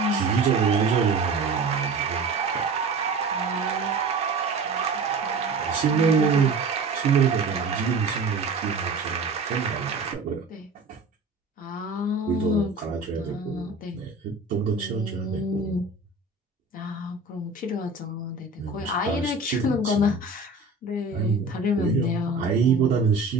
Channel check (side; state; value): left; quieter; 3.5 dB